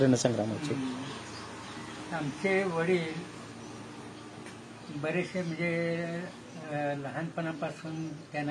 रणसंग्रामाची. आमचे वडील बरेचसे म्हणजे लहानपणापासून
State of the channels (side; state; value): both; identical; correlation 1.00